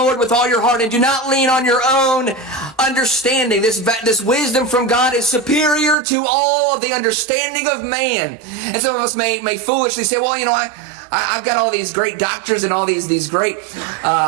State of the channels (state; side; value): drops out; left; at 6.0 s